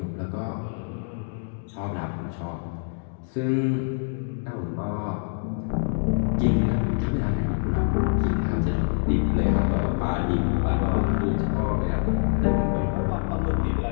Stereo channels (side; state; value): right; silent; digital silence